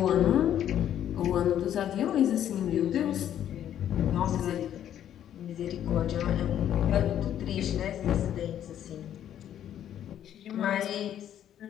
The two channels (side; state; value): right; quieter; 10.6 dB